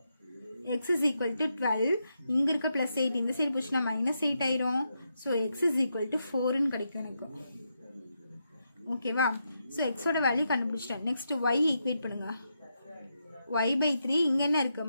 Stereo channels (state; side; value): inverted; both; correlation -0.83